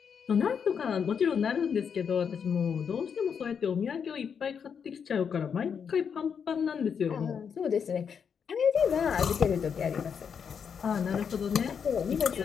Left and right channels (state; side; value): quieter; right; 6.9 dB